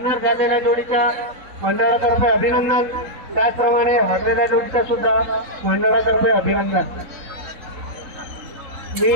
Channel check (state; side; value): late; left; 3.8 ms